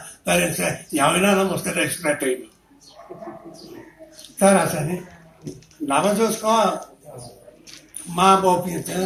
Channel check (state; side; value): identical; both; correlation 1.00